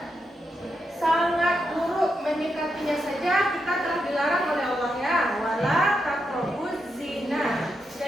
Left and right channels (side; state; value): both; normal; correlation 0.84